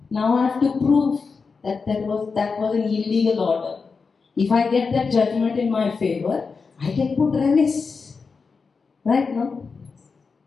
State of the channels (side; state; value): right; quieter; 4.9 dB